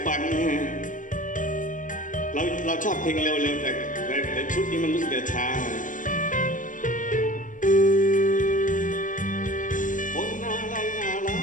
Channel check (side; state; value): right; late; 0.38 ms